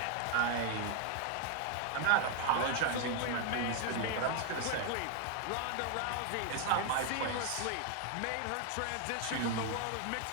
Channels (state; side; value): different; both; correlation 0.00